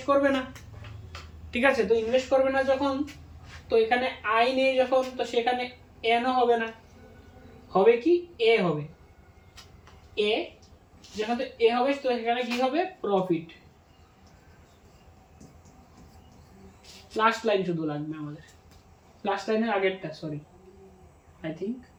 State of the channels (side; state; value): both; identical; correlation 1.00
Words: করবে না। ঠিক আছে, তো ইনভেস্ট করবে না যখন, তো এখানে আই নেই যখন, তো সেখানে এনও হবে না, হবে কি এ হবে। এ যখন এ হবে তো সেখানে কি হবে? প্রফিট। লাস্ট লাইন শুধু লাগবে আমাদের, লাস্ট লাইনের আগেরটা, sorry, I think